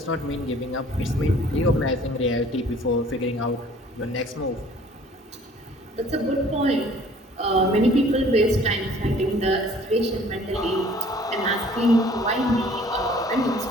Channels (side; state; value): both; normal; correlation 0.53